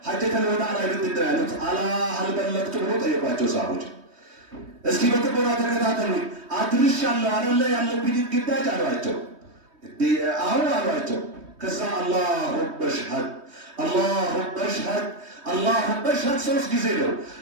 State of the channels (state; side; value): late; left; 3.2 ms